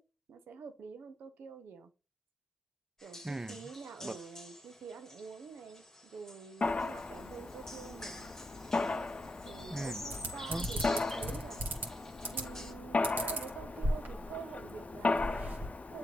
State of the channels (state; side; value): normal; both; correlation 0.82